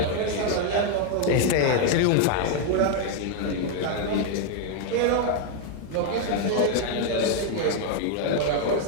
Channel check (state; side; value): different; both; correlation 0.00